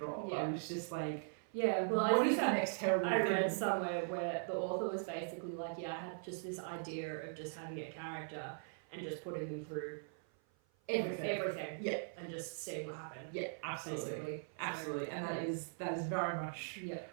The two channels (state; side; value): silent; left; 51 dB below the other